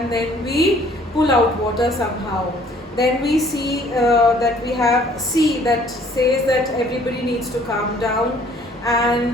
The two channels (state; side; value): normal; both; correlation 0.58